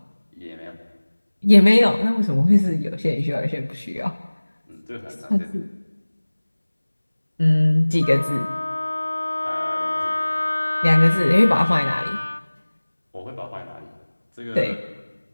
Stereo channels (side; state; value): both; inverted; correlation -1.00